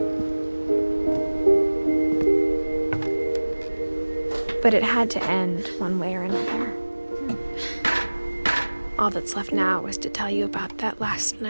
But it had to end one way or another. All that's left now is to tell you about that last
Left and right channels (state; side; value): inverted; both; correlation -1.00